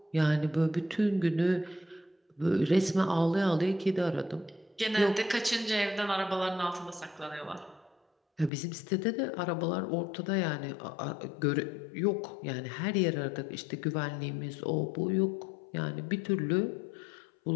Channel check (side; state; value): right; drops out; at 8.5 s